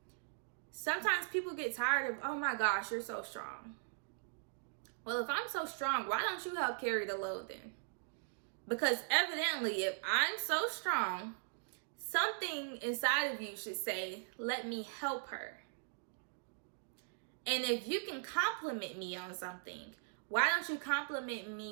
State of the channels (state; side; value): silent; left; digital silence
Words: Sometimes people get tired of, "Oh my gosh, you're so strong." Well, if I'm so strong, why don't you help carry the load then? Because evidently, if I'm so strong, something inside of you should say, "Let me help her." And if you can compliment me on something, why don't you compliment